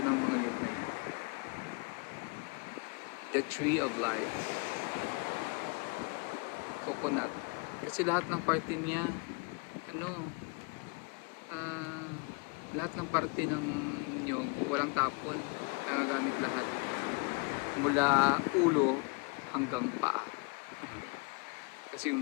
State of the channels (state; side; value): quieter; right; 31.8 dB